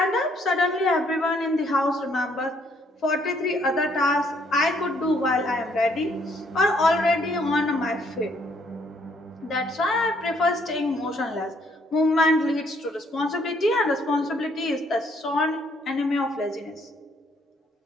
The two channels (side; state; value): both; normal; correlation 0.67